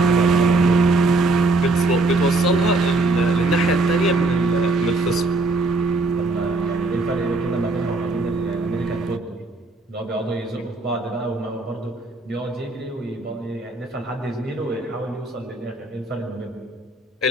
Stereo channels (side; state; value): left; quieter; 3.1 dB